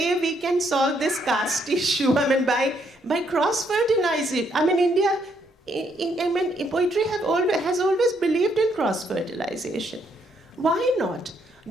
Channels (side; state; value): both; normal; correlation 0.72